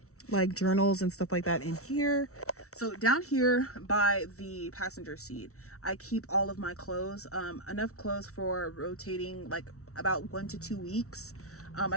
like journals and stuff like that in here. So down here by the passenger seat, I keep all of my clothes, enough clothes for rotating like about 1 to 2 weeks.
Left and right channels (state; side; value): late; right; 0.64 ms